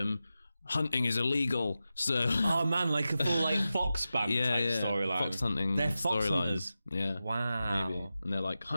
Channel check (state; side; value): inverted; both; correlation -0.93